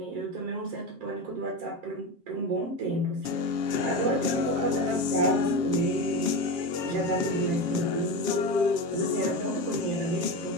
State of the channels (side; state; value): left; late; 7.5 ms